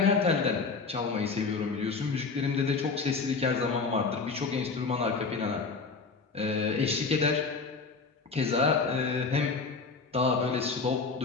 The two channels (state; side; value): quieter; right; 4.5 dB